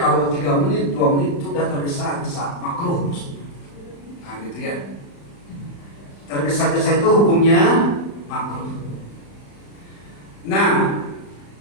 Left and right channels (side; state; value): right; late; 35 ms